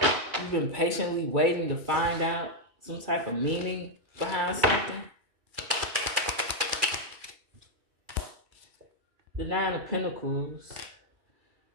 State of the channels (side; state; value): left; late; 2.4 ms